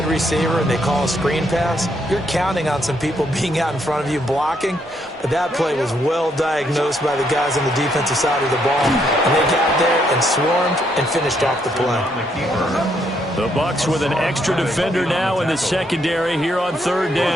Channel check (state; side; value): normal; both; correlation 0.74